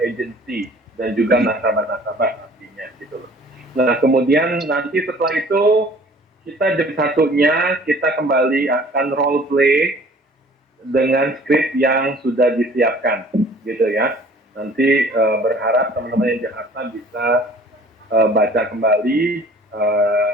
agency dan juga nasabah-nasabah nantinya gitu loh. Nah, kemudian nanti setelah itu kita jam 1-nya kita kembali akan role play dengan skrip yang sudah disiapkan gitu ya. Nanti berharap teman-teman yang Jakarta bisa baca kembali,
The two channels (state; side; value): normal; both; correlation 0.51